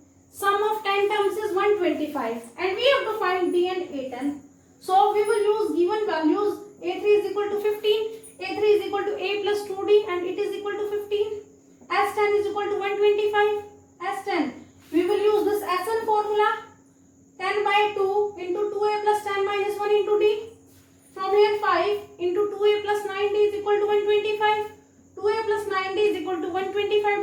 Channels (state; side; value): identical; both; correlation 1.00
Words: Sum of 10 terms is 125 and we have to find D and A10. So we will use given values. A3 is equal to 15. A3 is equal to A plus 2D and it is equal to 15. S10 is equal to 125. S10. We will use this SN formula. 10 by 2 into 2A plus 10 minus 1 into D. From here 5 into 2A plus 9D is equal to 125. 2A plus 9D is equal to 125